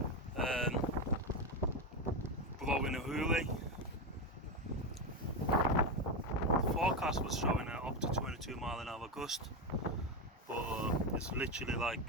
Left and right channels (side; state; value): both; normal; correlation 0.11